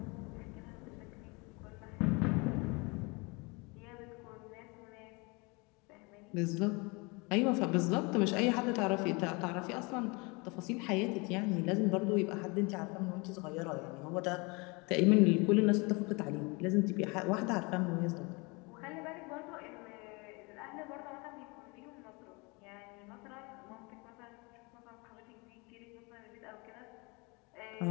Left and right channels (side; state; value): right; quieter; 28.3 dB